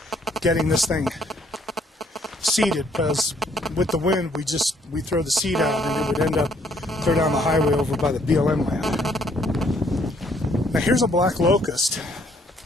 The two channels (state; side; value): normal; both; correlation 0.66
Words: getting this thing seeded, because with the wind we throw the seed out and it would end up clear down the highway over by the BLM land. Now here's a black locust